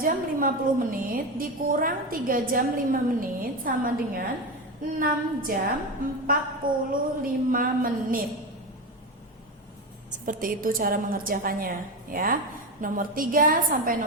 jam 50 menit dikurang 3 jam 5 menit sama dengan 6 jam 45 menit. Seperti itu cara mengerjakannya ya. Nomor 3 sampai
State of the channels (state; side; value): normal; both; correlation 0.18